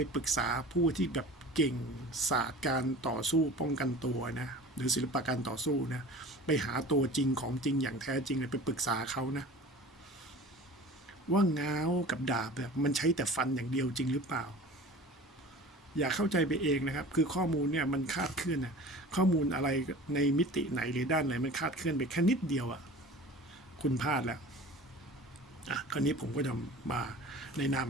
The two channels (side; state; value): both; normal; correlation 0.39